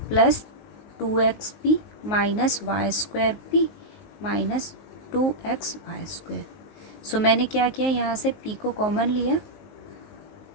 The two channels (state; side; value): late; right; 19 ms